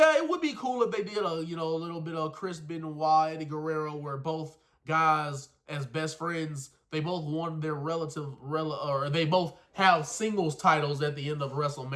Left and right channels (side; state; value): both; identical; correlation 1.00